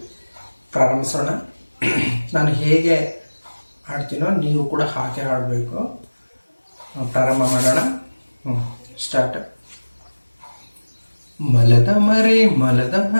ಪ್ರಾರಂಭಿಸೋಣ. ನಾನು ಹೇಗೆ ಹಾಡ್ತೀನೋ ನೀವು ಕೂಡ ಹಾಗೆ ಹಾಡಬೇಕು. ಪ್ರಾರಂಭ ಮಾಡೋಣ. ಸ್ಟಾರ್ಟ್. ಮಲದ ಮರಿ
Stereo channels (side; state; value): both; inverted; correlation -1.00